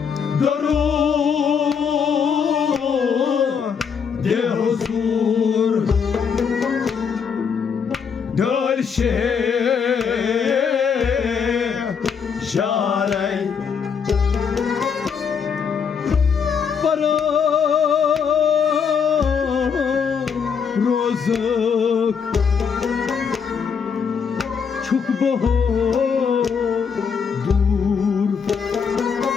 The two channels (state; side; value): quieter; right; 6.5 dB